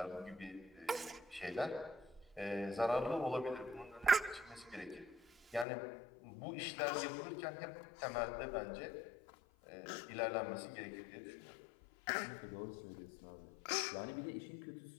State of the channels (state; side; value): drops out; right; at 5.7 s